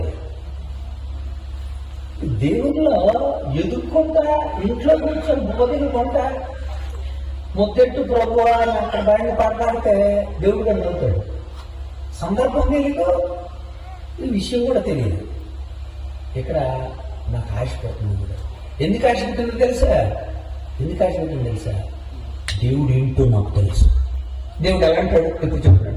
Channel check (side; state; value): both; identical; correlation 1.00